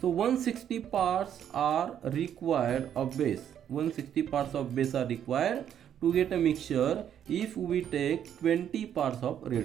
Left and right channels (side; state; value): left; quieter; 9.6 dB